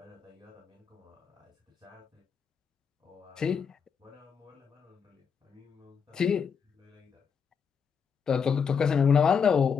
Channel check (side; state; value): right; quieter; 6.5 dB